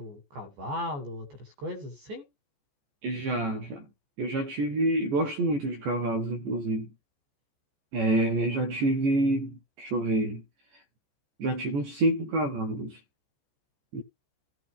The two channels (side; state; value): left; late; 14 ms